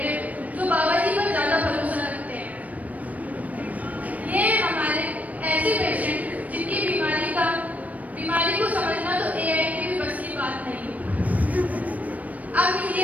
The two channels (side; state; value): left; late; 0.071 ms